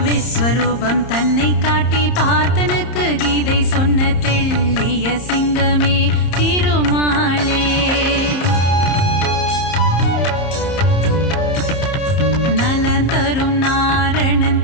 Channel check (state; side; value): late; right; 30 ms